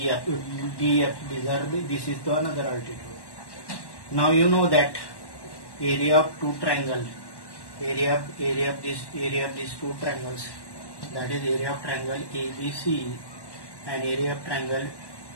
This is the another altitude. Now you know that area of two triangle, area of these two triangles, that is area of triangle ABC and area of triangle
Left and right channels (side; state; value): right; late; 1.1 ms